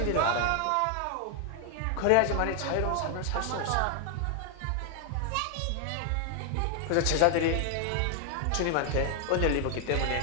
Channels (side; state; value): both; different; correlation 0.00